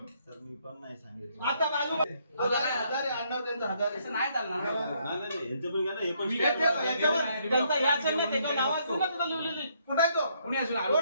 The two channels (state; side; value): inverted; both; correlation -0.71